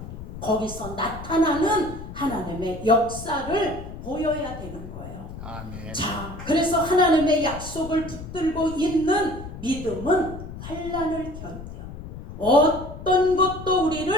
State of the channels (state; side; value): noise; left; rumble, 11 dB below the sound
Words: 거기서 나타나는 하나님의 역사를 보여야 되는 거예요. 아멘. 자, 그래서 하나님의 약속을 붙들고 있는 믿음은 환난을 견뎌. 어떤 것도